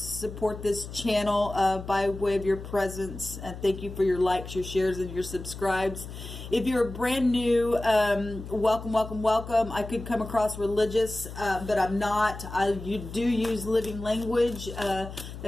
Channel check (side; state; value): left; noise; hum, 11 dB below the sound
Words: this channel by way of your presence. And thank you for your likes, your shares, and your subscribes. If you're brand new, welcome, welcome, welcome. I could come across religious, but I'm not. You do use living language.